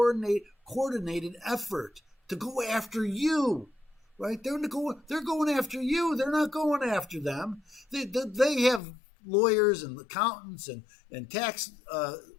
effort to go after you, right? They're going after you. They're not going after them. They have lawyers and accountants and tax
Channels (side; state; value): right; drops out; at 8.8 s